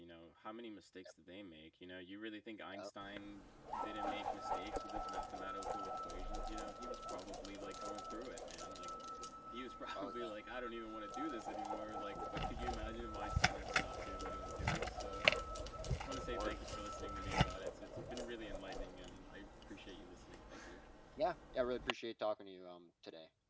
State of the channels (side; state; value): both; identical; correlation 1.00